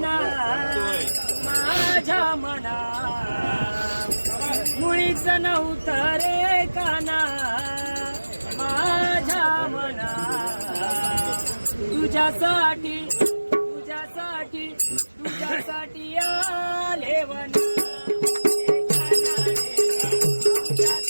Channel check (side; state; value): both; inverted; correlation -1.00